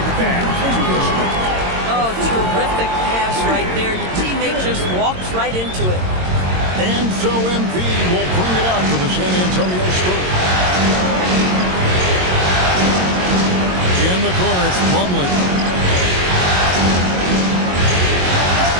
back to their strength. Oh, terrific pass right there. Your teammate just walks right into it. And so MP will bring it up for the San Antonio Spurs. In the corner, it's Plumlee.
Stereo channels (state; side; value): late; left; 22 ms